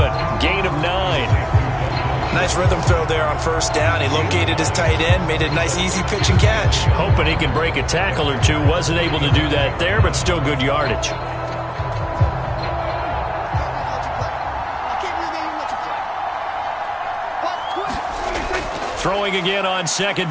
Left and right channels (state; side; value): identical; both; correlation 1.00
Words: Gain of 9. Nice rhythm throw there on first down. He located his tight end, made a nice easy pitch and catch. Hoping he can break a tackle or two. Wasn't able to do that there, but still good yardage. Throwing again on 2nd